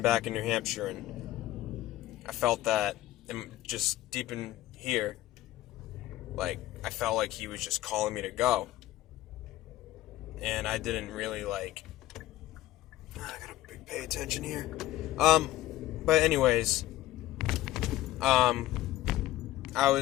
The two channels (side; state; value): right; quieter; 15.0 dB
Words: back in New Hampshire, and I felt that just deep in here, like I felt like He was just calling me to go. And I didn't really I gotta pay attention here. But anyways, I